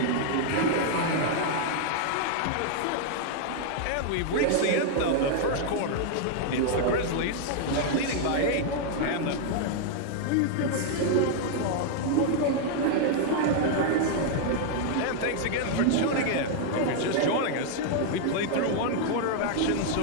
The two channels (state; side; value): different; both; correlation 0.00